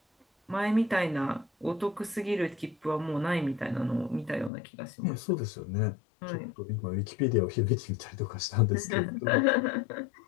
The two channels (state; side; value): drops out; right; at 4.5 s